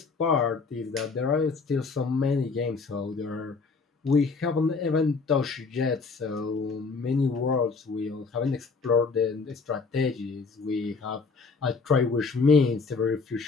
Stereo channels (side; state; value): right; quieter; 4.5 dB